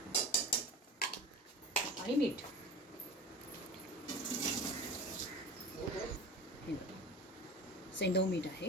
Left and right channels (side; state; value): both; normal; correlation 0.34